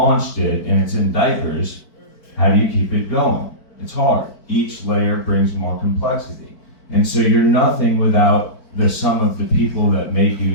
it and it's in diapers, how do you keep it going? It's hard. Each layer brings more complexity, and so you're nothing without the sum of the people that make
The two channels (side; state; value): right; late; 4.5 ms